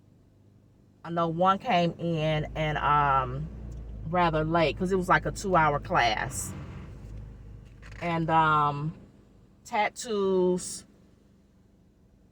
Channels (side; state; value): both; identical; correlation 1.00